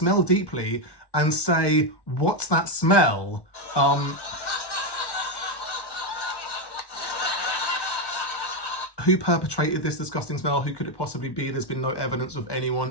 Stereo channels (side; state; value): right; late; 1.1 ms